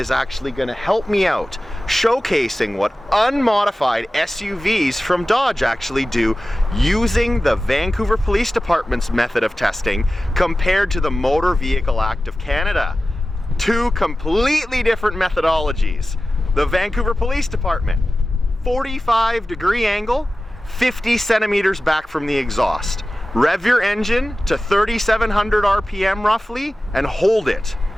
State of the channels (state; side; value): normal; both; correlation 0.95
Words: actually going to help me out, showcasing what unmodified SUVs from Dodge actually do using the Vancouver Police Department's method of testing compared to the Motor Vehicle Act of Canada. Two completely different methodologies. The Vancouver Police Department, 45-degree angle, 50 centimeters back from the exhaust. Rev your engine to 3,700 RPM roughly and hold it.